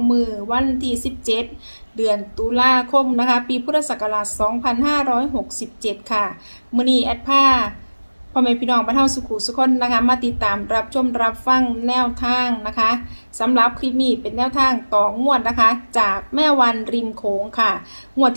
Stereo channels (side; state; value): both; inverted; correlation -1.00